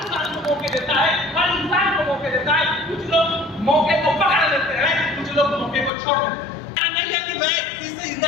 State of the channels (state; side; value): drops out; right; at 5.9 s